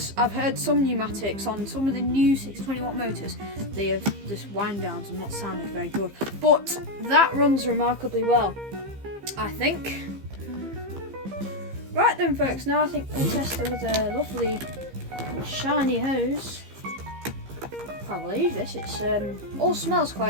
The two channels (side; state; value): left; late; 15 ms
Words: I've heard some Numatics on some of the new 620 watt motors, they have just wind downs and not sounded very good, but that runs remarkably well, I think. Right then, folks, now I think we'll test her with a lovely shiny hose. Can't believe this, it's all smells